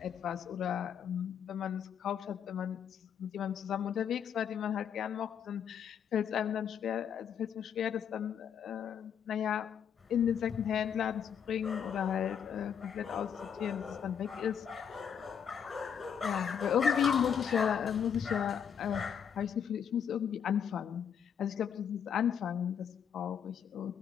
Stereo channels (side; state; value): right; quieter; 8.0 dB